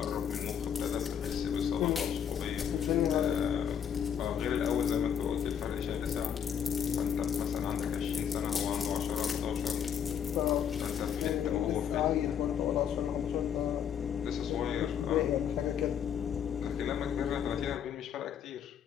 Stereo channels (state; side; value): quieter; right; 8.4 dB